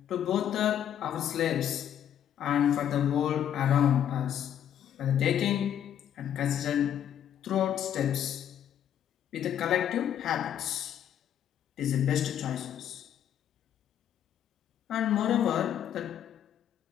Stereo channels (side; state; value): right; quieter; 9.9 dB